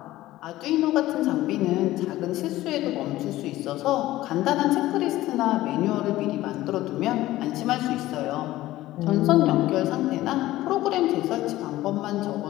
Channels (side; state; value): right; quieter; 16.0 dB